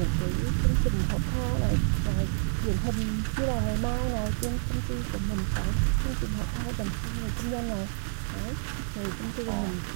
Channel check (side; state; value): left; silent; digital silence